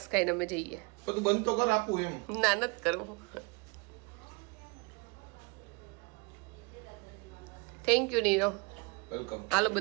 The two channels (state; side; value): quieter; left; 29.5 dB